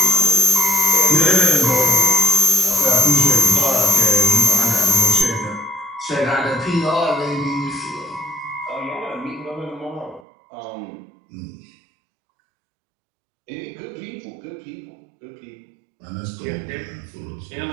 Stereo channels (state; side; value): drops out; left; at 10.2 s